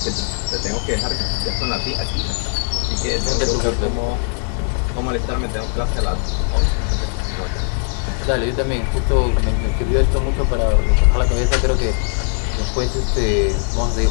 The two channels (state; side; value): quieter; right; 38.9 dB